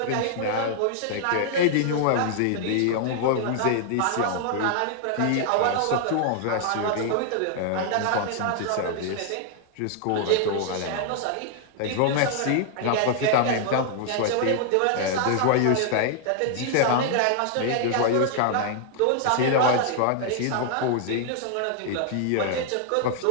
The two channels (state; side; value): different; both; correlation 0.00